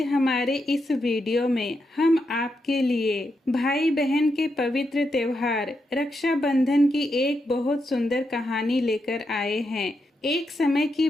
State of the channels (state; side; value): normal; both; correlation 0.84